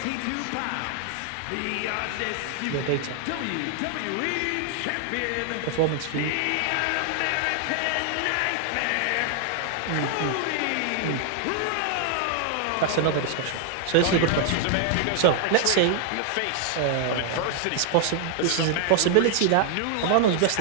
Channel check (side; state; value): both; different; correlation 0.00